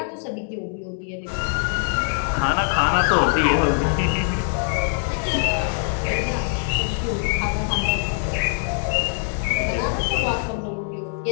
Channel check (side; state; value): right; silent; 64 dB below the other